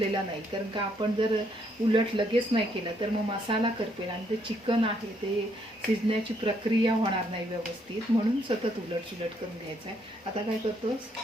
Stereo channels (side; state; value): both; normal; correlation 0.72